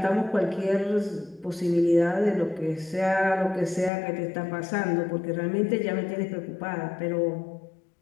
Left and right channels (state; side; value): drops out; right; at 3.9 s